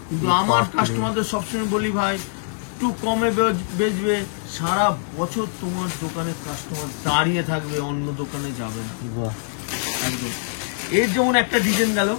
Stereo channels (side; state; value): right; silent; digital silence